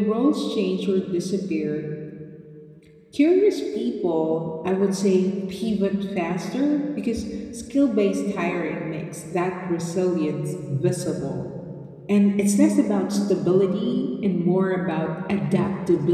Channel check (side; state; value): both; identical; correlation 1.00